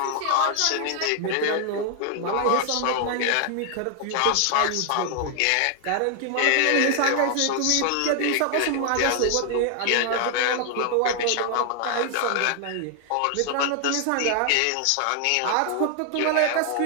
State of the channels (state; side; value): different; both; correlation 0.00